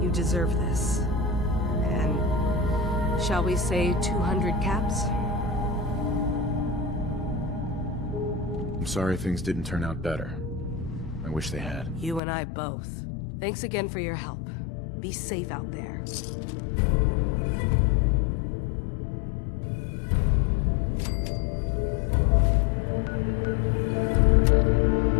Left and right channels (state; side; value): drops out; right; at 12.2 s